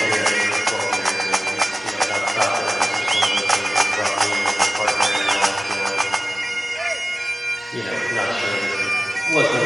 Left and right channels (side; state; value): both; normal; correlation 0.97